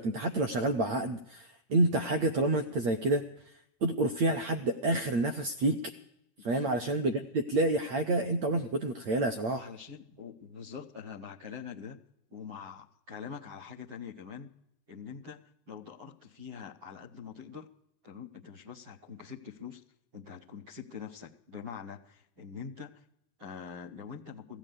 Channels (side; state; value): left; late; 8.7 ms